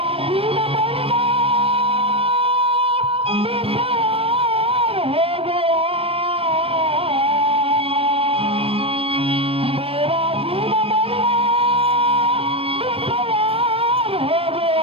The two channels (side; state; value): left; late; 0.28 ms